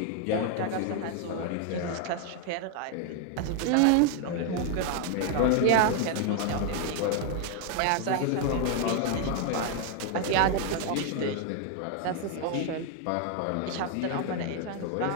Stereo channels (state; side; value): different; both; correlation 0.01